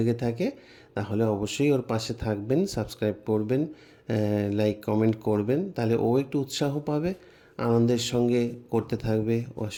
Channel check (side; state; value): both; identical; correlation 1.00